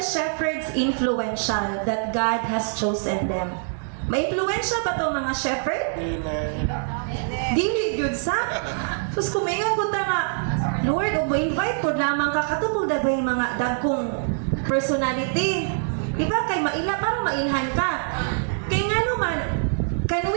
influential that God has chosen them? May-influensya ba to mga shepherd? Dili gyud sa. Sus kumingan ko ta nga, Lord, o invite po lamang ka katupod ba yung mga dagkong personality. Diba? Kay maila, parang mailhan ka. Kay nga naman, kay can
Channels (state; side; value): silent; left; digital silence